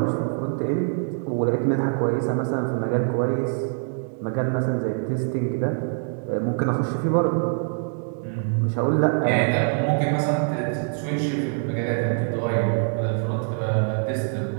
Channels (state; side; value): silent; left; 62 dB below the other